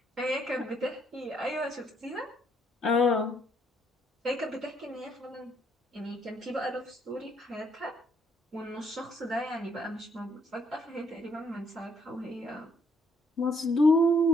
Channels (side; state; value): both; normal; correlation 0.69